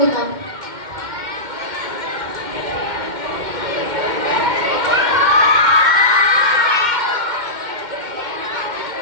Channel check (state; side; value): late; left; 2.1 ms